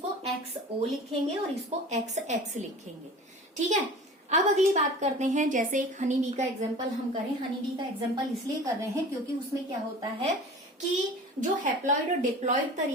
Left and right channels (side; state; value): both; normal; correlation 0.40